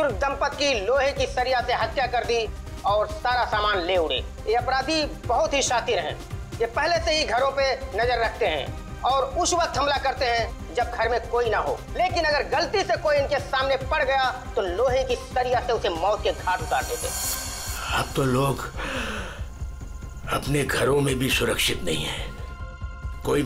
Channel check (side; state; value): both; identical; correlation 1.00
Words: दंपत्ति की लोहे की सरिया से हत्या कर दी और सारा सामान ले उड़े। ये अपराधी बहुत ही शातिर हैं। ये पहले से ही घरों पे नजर रखते हैं और उस वक्त हमला करते हैं जब घर में कोई ना हो। लेकिन अगर गलती से कोई इनके सामने पड़ गया तो लोहे की सरिया से उसे मौत के घाट उतार देते। अब तो लोग अपने घरों में भी सुरक्षित नहीं है, कोई